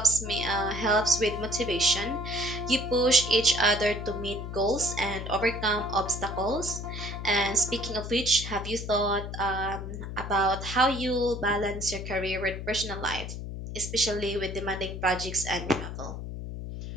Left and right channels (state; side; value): noise; left; hum, 7 dB below the sound